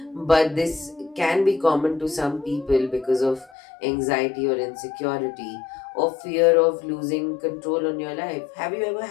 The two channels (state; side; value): drops out; right; at 3.5 s